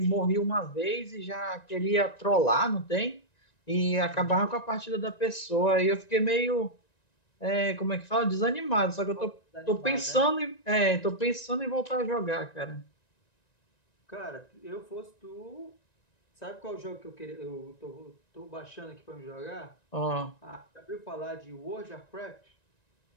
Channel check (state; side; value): late; right; 1.9 ms